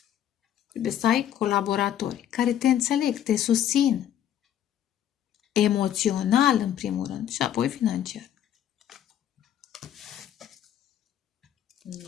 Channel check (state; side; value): quieter; right; 10.7 dB